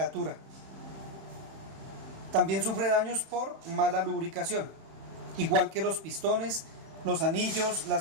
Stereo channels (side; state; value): left; late; 31 ms